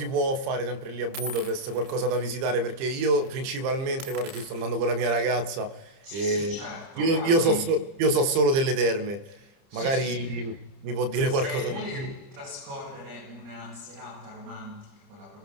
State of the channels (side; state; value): left; late; 30 ms